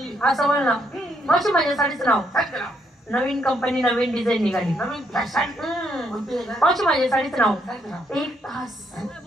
असं बोल ना मावशी माझ्या साडीचं नाव सांग त्याला नवीन कंपनी नवीन डिझाईन निघाली नवीन फॅशन कोणती आहे का? मावशी माझ्या साडीचं नाव सांग त्याला 1 तास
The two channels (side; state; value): both; normal; correlation 0.74